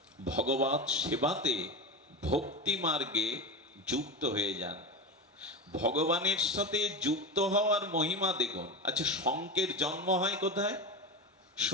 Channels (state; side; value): normal; both; correlation 0.21